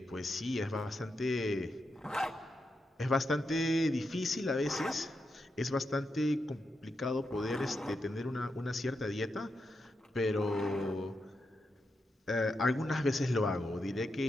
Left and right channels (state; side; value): normal; both; correlation 0.86